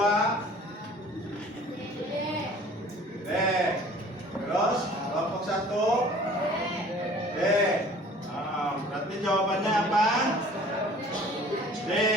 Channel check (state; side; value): normal; both; correlation 0.49